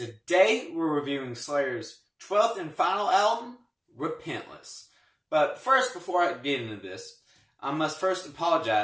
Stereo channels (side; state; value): both; identical; correlation 1.00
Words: we're reviewing Slayer's 12th and final album, Repentless. But first, before I get into this, I must first